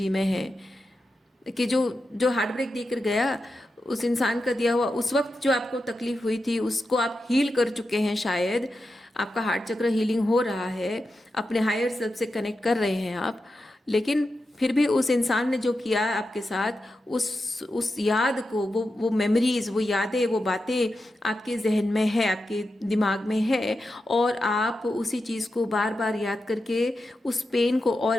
में हैं कि जो जो हार्ट ब्रेक देकर गया, उस इंसान का दिया हुआ उस वक्त जो आपको तकलीफ हुई थी उसको आप हील कर चुके हैं। शायद आपका हार्ट चक्र हीलिंग हो रहा है, अपने हायर सेल्फ से कनेक्ट कर रहे हैं आप, लेकिन फिर भी उस इंसान ने जो किया है आपके साथ, उस याद को, वो मेमोरीज, वो यादें, वो बातें आपके जहन में है, आपके दिमाग में है, और आप उसी चीज़ को बार बार याद करके उस पेन को और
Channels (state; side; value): normal; both; correlation 0.89